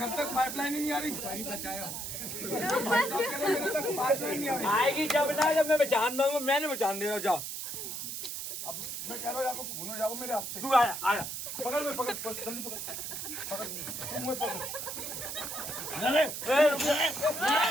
तक पाइपलाइन ही नहीं आ रही। भाई साहब कह रहे हैं मेरे तक पाइपलाइन नहीं आ रही। आएगी जब ना, जब मैं बचा दूंगा। मैंने बचा दिया। जा अब मैं कह रहा हूँ आपको खून हो जाओ मेरे हाथ से। तू आया आया। पकड़ में पकड़, जल्दी पकड़, मुंह पकड़।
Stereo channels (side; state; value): right; noise; hiss, 5 dB below the sound